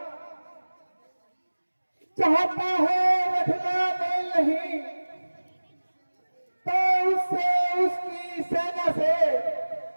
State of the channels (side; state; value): both; inverted; correlation -1.00